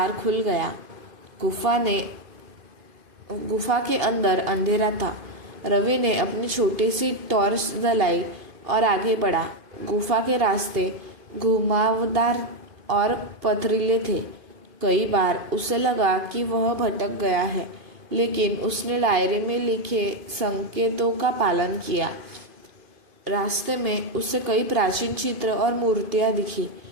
खुल गया। गुफा के अंदर अंधेरा था। रवि ने अपनी छोटी सी टॉर्च जलाई और आगे बढ़ा। गुफा के रास्ते घुमावदार और पथरीले थे। कई बार उसे लगा कि वह भटक गया है, लेकिन उसने डायरी में लिखे संकेतों का पालन किया। रास्ते में उसे कई प्राचीन चित्र और मूर्तियां दिखी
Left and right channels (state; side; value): late; left; 2.5 ms